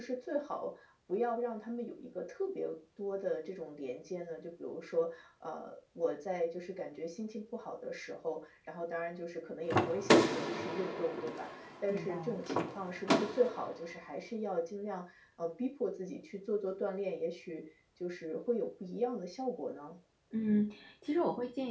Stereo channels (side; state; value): both; identical; correlation 1.00